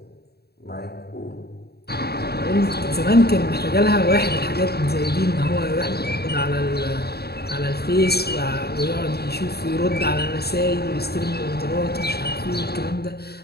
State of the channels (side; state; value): right; late; 0.47 ms